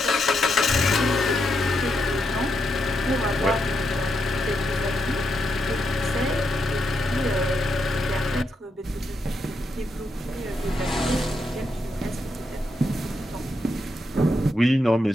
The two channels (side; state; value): both; normal; correlation 0.81